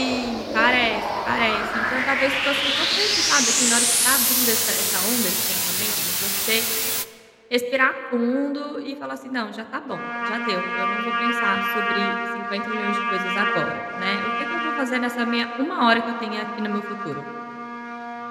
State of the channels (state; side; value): identical; both; correlation 1.00